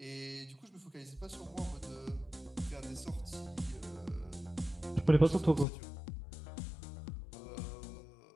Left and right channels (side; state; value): right; drops out; at 5.7 s